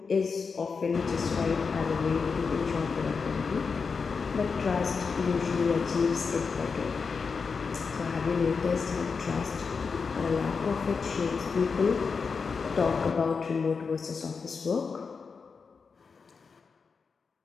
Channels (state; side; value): quieter; right; 5.2 dB